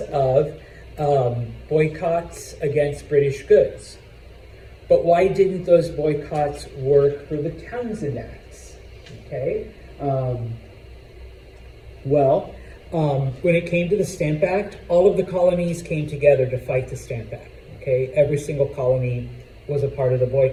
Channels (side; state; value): both; identical; correlation 1.00